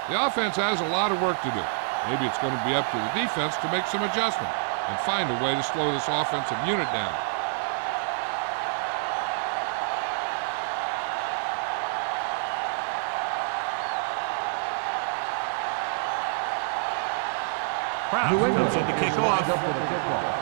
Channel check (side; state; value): left; silent; 60 dB below the other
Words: The offense has a lot of work to do. Maybe it's going to be up to the defense to make some adjustment and find a way to slow this offensive unit down. Brown comes in to kick off.